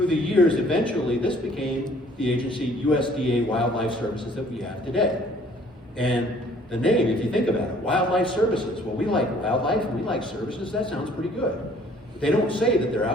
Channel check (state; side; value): normal; both; correlation 0.57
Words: the years, eventually, this became the agency USDA Wildlife Services that we have today. And the name, if you think about it, Wildlife Services, well, we like wildlife and we like services, that sounds pretty good. They don't say that they're